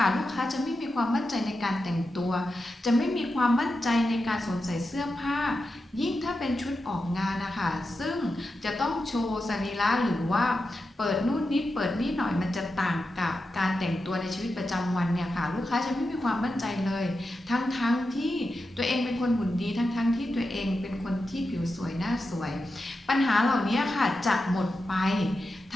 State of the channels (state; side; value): normal; both; correlation 0.90